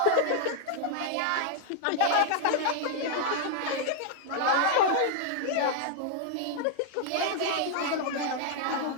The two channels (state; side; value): different; both; correlation 0.00